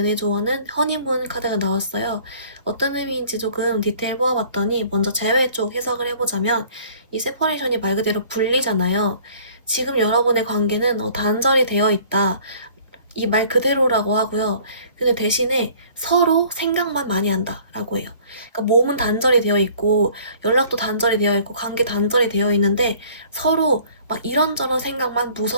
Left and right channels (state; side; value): inverted; both; correlation -0.52